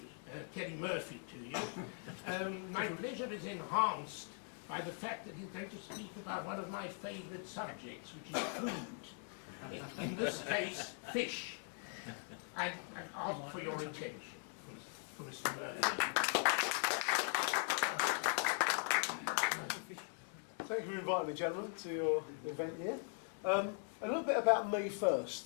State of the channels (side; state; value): right; silent; 51 dB below the other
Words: Murphy to you. My pleasure is enhanced by the fact that he's going to speak about one of my favourite subjects, which is food. In this case, fish. I ask for your attention, Mr. Murphy. Thank you for inviting me, gentlemen, to your event here. A little bit about me